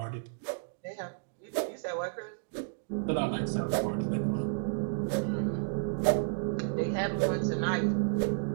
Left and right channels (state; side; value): silent; left; digital silence